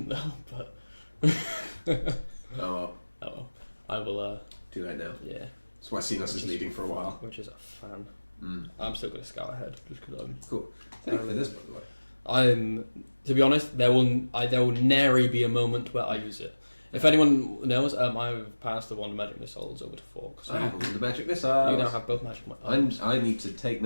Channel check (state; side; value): inverted; both; correlation -1.00